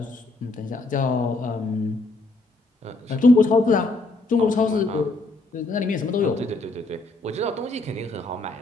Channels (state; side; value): quieter; right; 3.0 dB